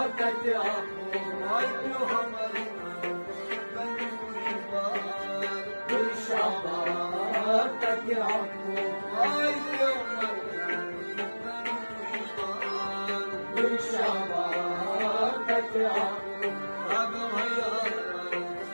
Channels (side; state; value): both; inverted; correlation -1.00